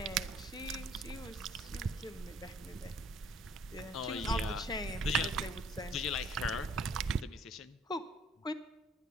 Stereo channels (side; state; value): both; normal; correlation 0.59